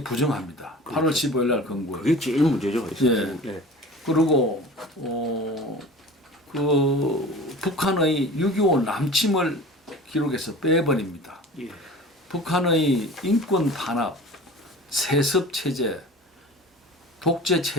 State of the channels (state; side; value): normal; both; correlation 0.39